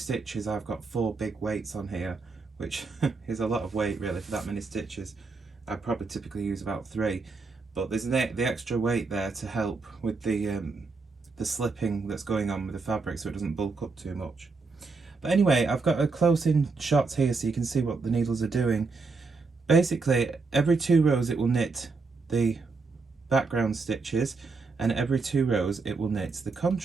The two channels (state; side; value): quieter; left; 4.2 dB